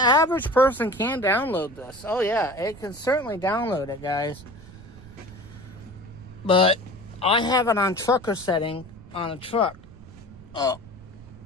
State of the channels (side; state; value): right; noise; rumble, 19 dB below the sound